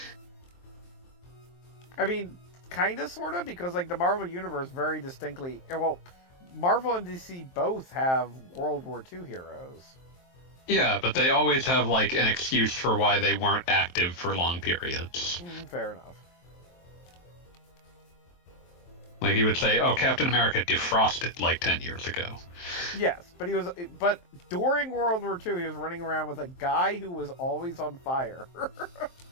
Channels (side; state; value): right; late; 23 ms